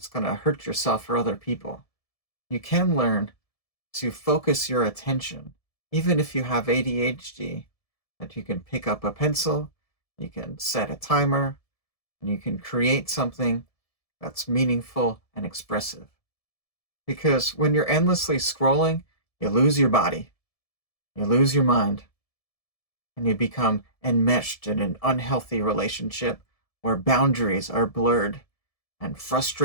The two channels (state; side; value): late; right; 1.7 ms